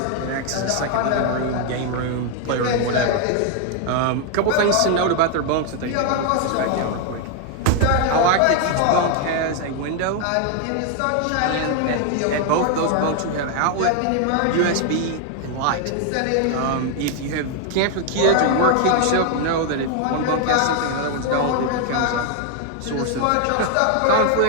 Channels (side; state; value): both; different; correlation 0.00